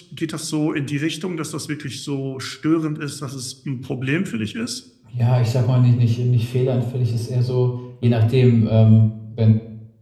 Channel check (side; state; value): both; identical; correlation 1.00